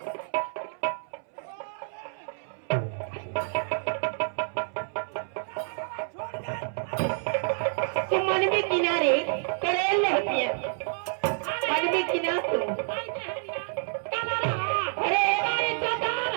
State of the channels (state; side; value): silent; left; 59 dB below the other